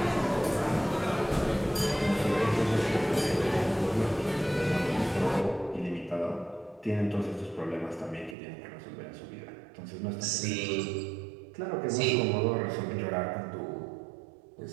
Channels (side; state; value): left; drops out; at 8.3 s